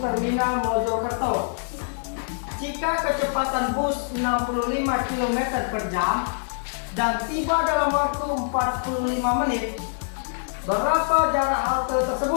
Mojokerto. Jika kecepatan bus 65 km per jam dan tiba dalam waktu 45 menit, berapa jarak halte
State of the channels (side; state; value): right; silent; digital silence